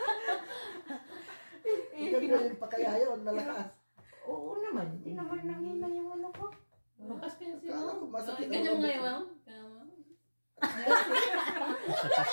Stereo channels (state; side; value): inverted; both; correlation -1.00